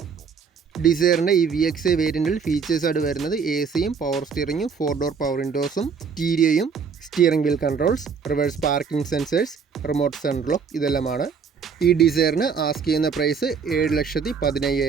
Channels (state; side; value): quieter; left; 5.9 dB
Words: ഡിസയറിൻ്റെ ഈ VXi വേരിയൻറ്റിൽ ഫീച്ചേഴ്സായിട്ട് വരുന്നത് AC-യും പവർ സ്റ്റിയറിങ്ങും 4 ഡോർ പവർ വിൻഡോസും സ്റ്റീരിയോയും steering wheel controls, reverse parking sensors, remote central lock ഇതെല്ലാമാണ്. ഈ ഡിസയറിന് ആസ്ക് ചെയ്യുന്ന പ്രൈസ്